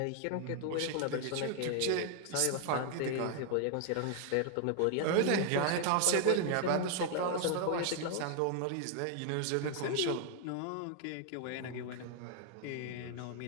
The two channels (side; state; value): both; different; correlation 0.00